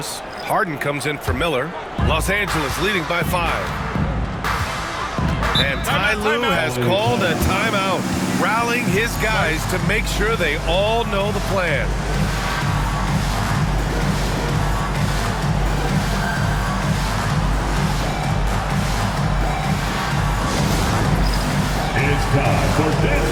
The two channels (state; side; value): identical; both; correlation 1.00